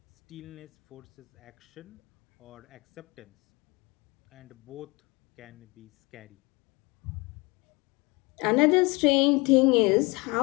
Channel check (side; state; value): right; quieter; 26.2 dB